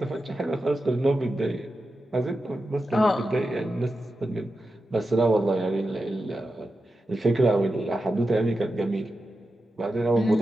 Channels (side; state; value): both; normal; correlation 0.91